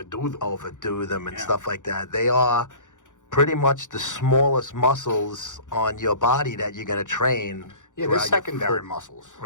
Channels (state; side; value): late; right; 0.86 ms